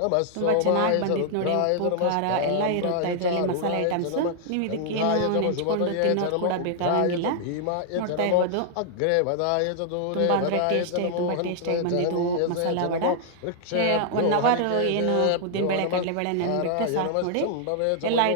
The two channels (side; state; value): both; different; correlation -0.01